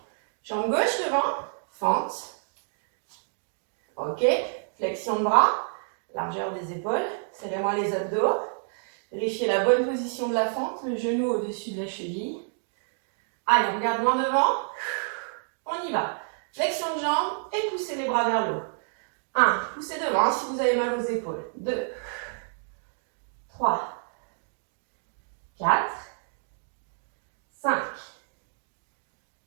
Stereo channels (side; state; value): left; silent; digital silence